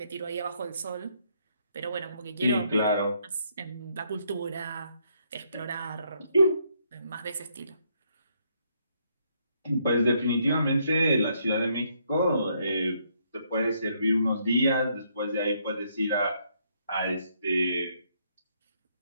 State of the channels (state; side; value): inverted; both; correlation -0.72